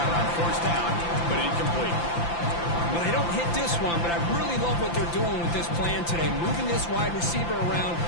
on 4th down, but incomplete. Well, they don't hit this one, but I really love what they're doing with this plan today. Moving this wide receiver around,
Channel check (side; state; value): right; late; 5.8 ms